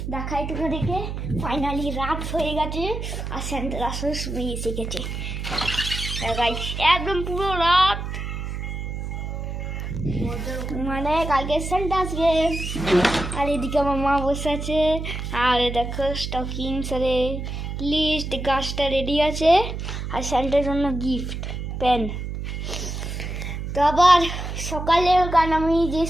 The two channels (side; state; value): right; noise; hum, 5 dB below the sound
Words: দেখাই তোমাদেরকে, ফাইনালি রাত হয়ে গেছে আর সেন্টার আসার সময় এসে গেছে। গাইস, একদম পুরো রাত, মানে কালকে সেন্টা আসবে। আর এদিকে আমার মা বসে আছে। আর দেখো স্টকিংস, আরে লিস্ট, গাছটা রেডি আছে। আর সেন্টার জন্য গিফট পেন। তো আবার সকালে, কারণ আমি যে